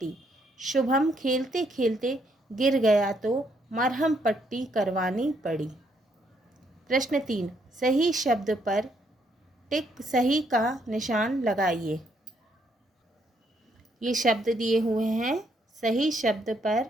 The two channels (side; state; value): both; normal; correlation 0.72